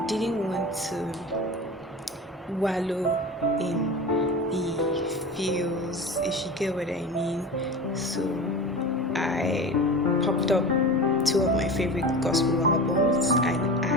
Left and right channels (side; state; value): both; normal; correlation 0.30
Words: didn't want to wallow in the feels, if you get what I mean. So I popped up two of my favorite gospel albums, and I